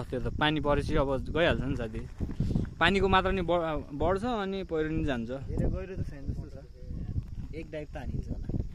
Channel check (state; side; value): identical; both; correlation 1.00